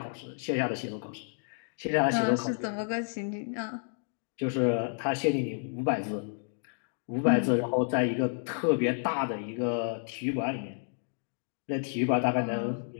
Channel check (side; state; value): right; silent; digital silence